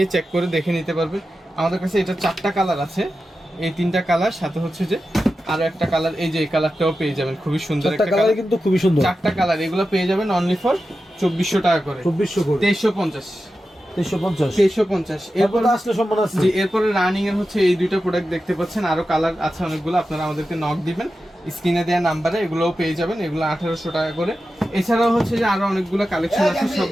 চেক করে দেখে নিতে পারবে। আমাদের কাছে এটা 4টা কালার আছে, এই 3টা কালার, সাথে হচ্ছে যে আরো একটা কালার, এই যে এই কালারটাও পেয়ে যাবেন, খুবই সুন্দর একটা কালার, কিন্তু খুবই সুন্দর। 4টা কালার, এগুলো পেয়ে যাবেন অনলি ফর 2400 টাকা করে। 2400 করে, 2350, 2350, 2350। এরপর আসলে সম্মান আছে। জি, এরপরে রানিং এর হচ্ছে এই দুইটা প্রোডাক্ট দেখতে পাচ্ছেন, আরো কালার আছে অনেকগুলো, আপনারা আমাদেরকে নক দিবেন স্ক্রিনে দেওয়া নাম্বারে, এগুলোও পেয়ে যাবেন, এগুলো 1800 টাকা করে। এছাড়াও হচ্ছে যে আরো অনেকগুলো কালেকশন আছে,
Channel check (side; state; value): both; normal; correlation 0.92